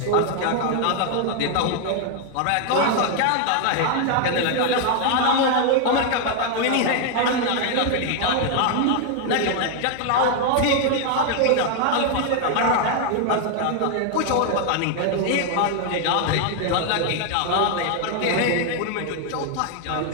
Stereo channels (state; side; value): different; both; correlation 0.00